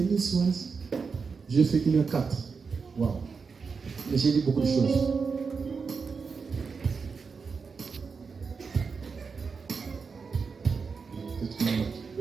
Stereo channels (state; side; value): quieter; left; 5.2 dB